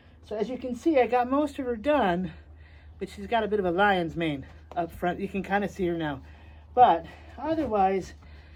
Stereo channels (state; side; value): identical; both; correlation 1.00